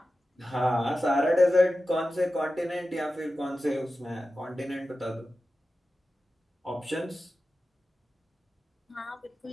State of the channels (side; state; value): both; normal; correlation 0.93